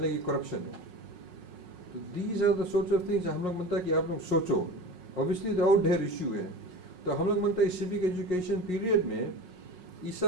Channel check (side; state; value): left; late; 5.5 ms